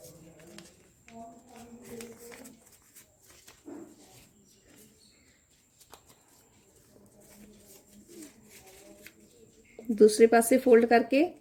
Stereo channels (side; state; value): both; identical; correlation 1.00